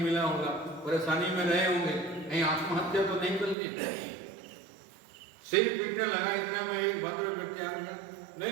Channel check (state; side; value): drops out; left; at 3.6 s